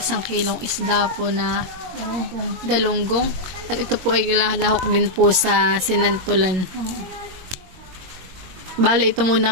kilong isda po na galunggong. At ito po ay lahok din po sa sinantulan. Bali ito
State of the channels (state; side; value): late; left; 22 ms